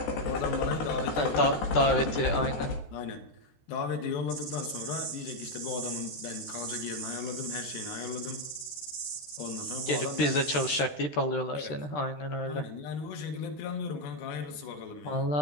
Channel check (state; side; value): late; right; 13 ms